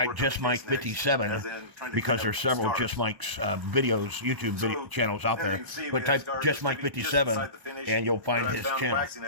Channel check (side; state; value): left; late; 1.0 ms